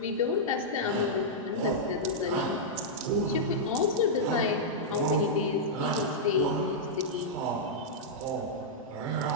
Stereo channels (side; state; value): both; normal; correlation -0.09